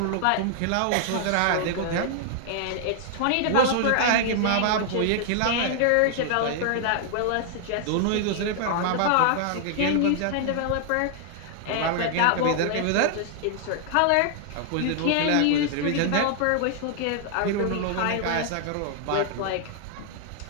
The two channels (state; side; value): different; both; correlation 0.00